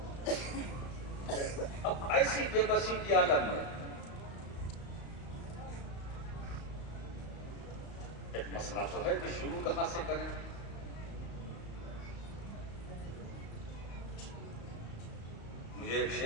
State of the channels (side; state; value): right; late; 35 ms